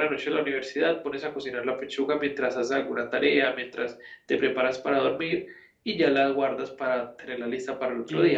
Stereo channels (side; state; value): both; identical; correlation 1.00